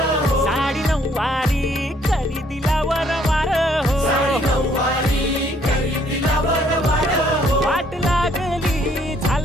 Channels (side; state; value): both; normal; correlation 0.65